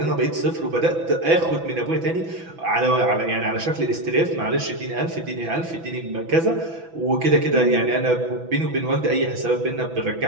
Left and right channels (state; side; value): late; left; 6.0 ms